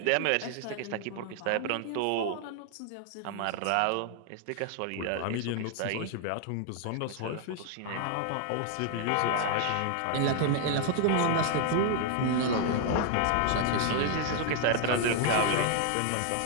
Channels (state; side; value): different; both; correlation 0.00